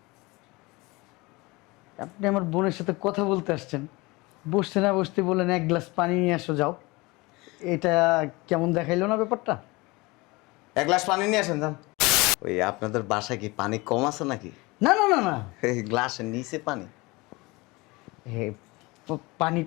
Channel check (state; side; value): quieter; right; 23.7 dB